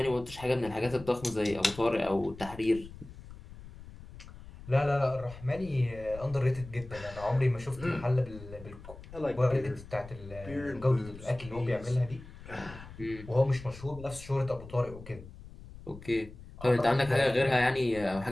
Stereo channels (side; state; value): left; noise; rumble, 16 dB below the sound